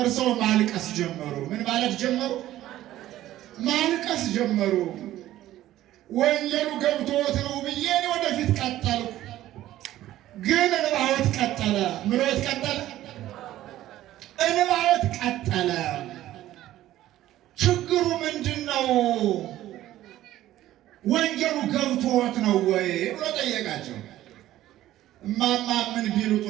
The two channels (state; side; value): quieter; left; 14.1 dB